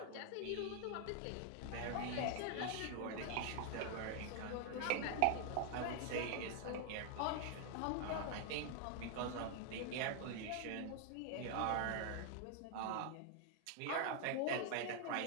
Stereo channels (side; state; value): both; different; correlation 0.00